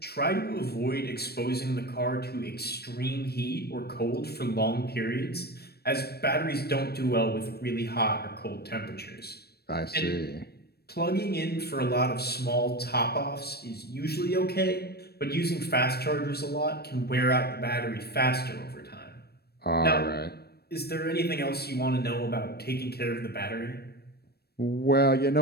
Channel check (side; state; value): right; late; 0.47 ms